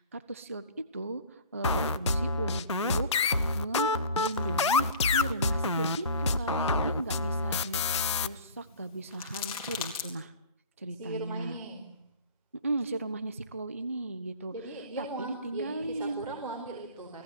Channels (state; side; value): inverted; both; correlation -0.41